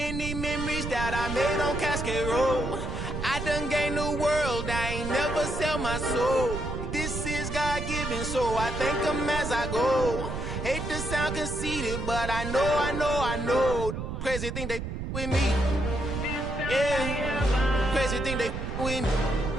memories that I made on Cascade Road. I done gained the world, I ain't never sell my soul. This is God-given, so I thank him as I go. Hate to sound conceited, but I know. Crazy thing they with me. Yeah, crazy thing they with me.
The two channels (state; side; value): noise; right; rumble, 5 dB below the sound